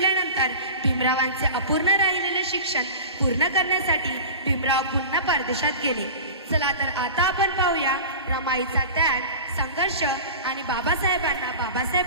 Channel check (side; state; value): both; inverted; correlation -0.34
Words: भीमरावांचे अपूर्ण राहिलेले शिक्षण पूर्ण करण्यासाठी भीमराव पुन्हा परदेशात गेले. चला तर आता आपण पाहूया रमाईचा त्याग, संघर्ष आणि बाबासाहेबांना बाबासाहेब